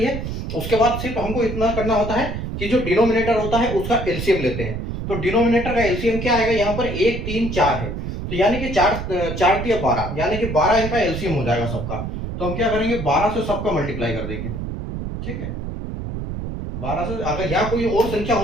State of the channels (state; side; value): noise; right; rumble, 5 dB below the sound